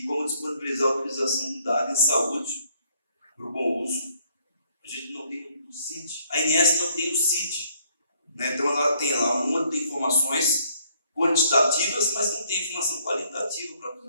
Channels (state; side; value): inverted; both; correlation -0.65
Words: como disponibilizar a utilização do dado em saúde para o bom uso. A gente não tem o CID, a INS não tem o CID, né? Então ela tem lá uma de informações quantitativas, mas não tem informação qualitativa para